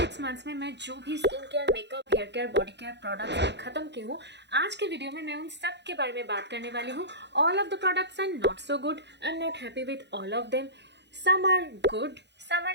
6 months में मैं जो भी skin care, makeup, hair care, body care products खत्म की हूँ, आज के वीडियो में मैं उन सब के बारे में बात करने वाली हूँ. All of the products are not so good, I am not happy with all of them. Some are good, some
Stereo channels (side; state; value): left; late; 0.50 ms